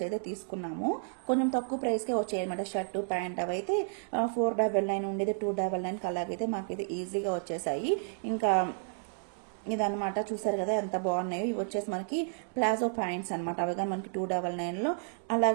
అయితే తీసుకున్నాము. కొంచెం తక్కువ ప్రైస్కే వచ్చాయి అనమాట. షర్టు ప్యాంట్ అవి అయితే 499 ఉండేది 299 అలాగైతే మాకైతే ఈజీగా వచ్చేసాయి. ఇంకా ఇదనమాట. చూసారు కదా ఎంత బాగున్నాయో. ఇవి వచ్చేసి మనకి ప్లాజో ప్యాంట్స్ అనమాట. అవి కానీ మనకి 299లో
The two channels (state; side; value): silent; left; 57 dB below the other